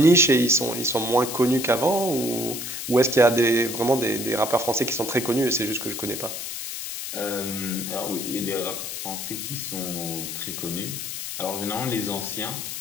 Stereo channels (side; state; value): left; noise; hiss, 6 dB below the sound